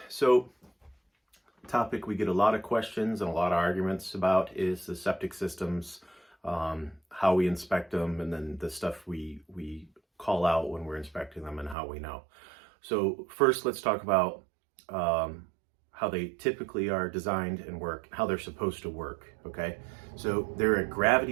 so topic we get a lot of questions and a lot of arguments about is the septic systems, how we inspect them, and then the stuff we call out when we're inspecting them and how we know. So first, let's talk about how they typically are designed and work, how they're supposed to work. Okay, so they're a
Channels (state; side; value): drops out; left; at 11.8 s